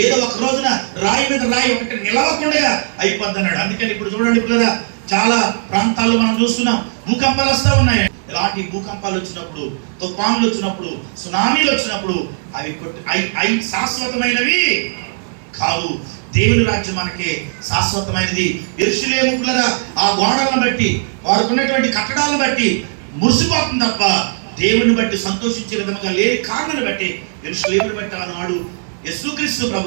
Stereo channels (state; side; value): silent; left; digital silence